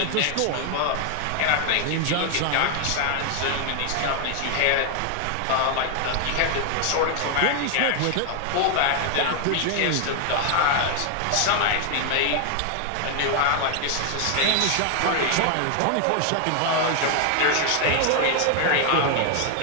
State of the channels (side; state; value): both; different; correlation 0.00